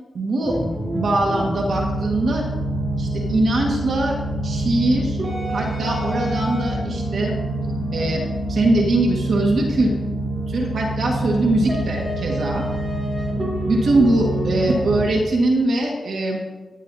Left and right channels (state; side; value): normal; both; correlation 0.85